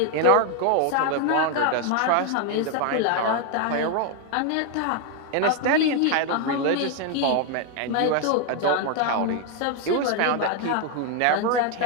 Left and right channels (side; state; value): both; different; correlation 0.01